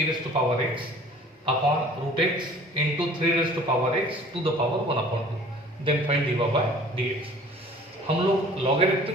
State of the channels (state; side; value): normal; both; correlation 0.49